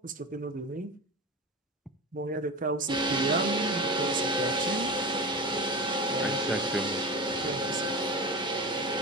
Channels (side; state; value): both; normal; correlation 0.26